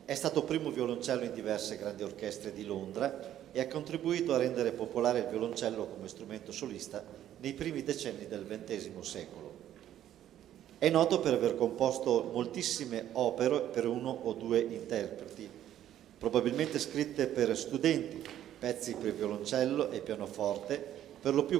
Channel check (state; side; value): quieter; left; 11.6 dB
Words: È stato primo violoncello in diverse grandi orchestre di Londra e ha contribuito a rendere popolare il violoncello come strumento solista nei primi decenni del XX secolo. È noto per aver composto moltissime opere per uno o due interpreti, probabilmente scritte per studenti, pezzi per violoncello e pianoforte, per lo